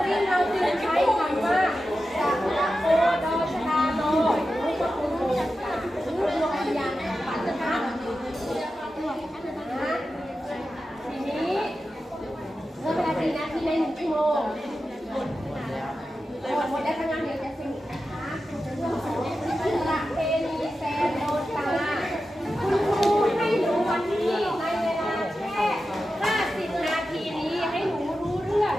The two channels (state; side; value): normal; both; correlation 0.92